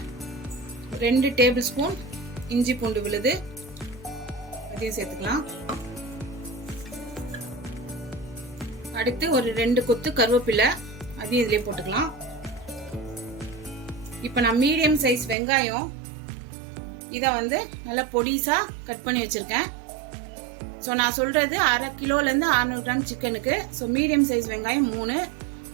2 டேபிள் ஸ்பூன் இஞ்சி பூண்டு விழுது அதையும் சேர்த்துக்கலாம். அடுத்து ஒரு 2 கொத்து கருவேப்பிலை அதையும் இதிலே போட்டுக்கலாம். இப்போ நான் மீடியம் சைஸ் வெங்காயம் இதை வந்து நல்லா பொடிசா கட் பண்ணி வச்சிருக்கேன். ஸோ நான் சொல்றது 1/2 கிலோலேருந்து 600 கிராம் சிக்கனுக்கு. ஸோ மீடியம் சைஸ் வெங்காயம் 3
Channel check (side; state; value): left; drops out; at 15.4 s